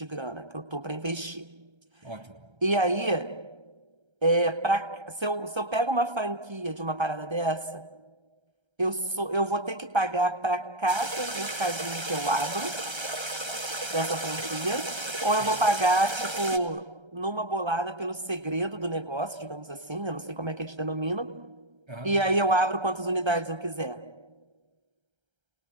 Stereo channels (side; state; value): left; late; 1.3 ms